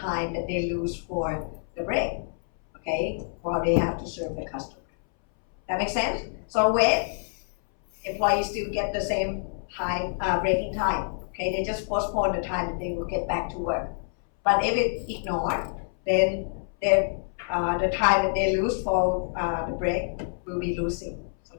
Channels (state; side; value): silent; right; 60 dB below the other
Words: that they lose for the break, okay, while they have to serve the customer. That makes sense? So wait, employees still get the same time, breaking time. Okay, they just postpone the time that they will get back to work. But if it's ignored, then the time that they lose for the break will be losing. So